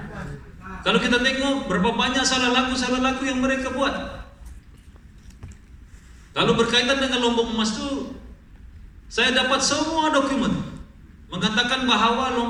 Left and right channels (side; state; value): both; identical; correlation 1.00